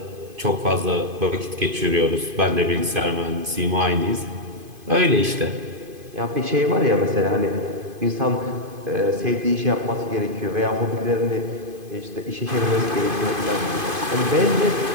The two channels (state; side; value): late; left; 2.5 ms